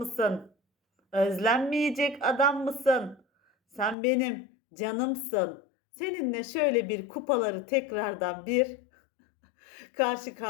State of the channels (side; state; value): right; drops out; at 4.0 s